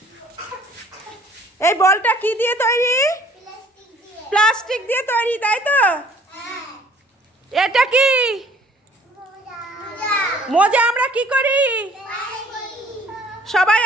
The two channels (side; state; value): both; normal; correlation 0.55